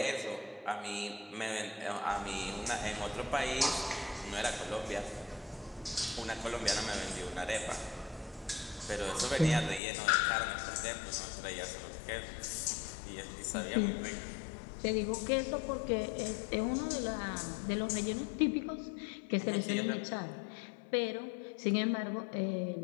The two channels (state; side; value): drops out; right; at 9.8 s